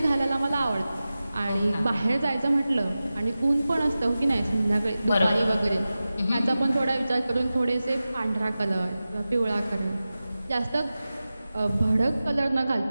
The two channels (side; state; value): both; inverted; correlation -0.95